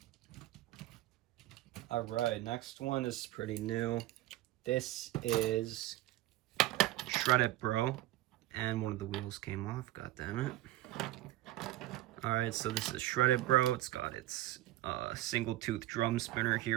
Alright, next one is pretty new. This is Shoutout Bro, and one of the wheels came off, god damn it. Alright, so this is Shoutout Bro. It's got its single tooth drum spinner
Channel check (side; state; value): left; quieter; 15.9 dB